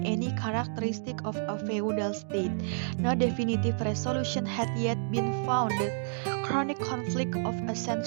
any characteristic of a feudal state. No definitive resolution had yet been found. The chronic conflict of a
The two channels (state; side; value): silent; left; digital silence